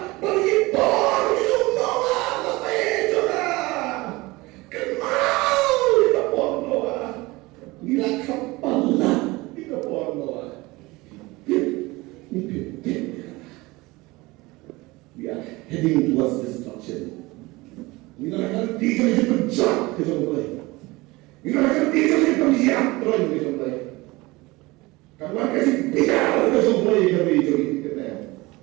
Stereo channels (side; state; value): left; quieter; 21.9 dB